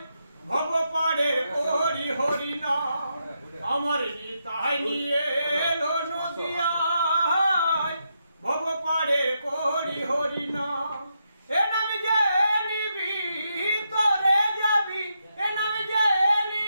ভব পারে করি হরি নাম। আমার নিতাই নিয়ে এলো নদিয়ায় ভব পারে করি হরি নাম। এ নাম যে নিবি তোরে যাবি, এ নাম যে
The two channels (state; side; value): inverted; both; correlation -0.82